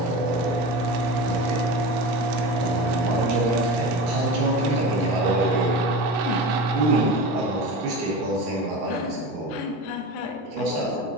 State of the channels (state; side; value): normal; both; correlation 0.29